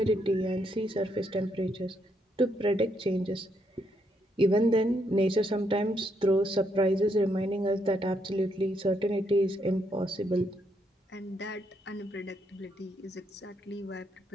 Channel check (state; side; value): normal; both; correlation 0.76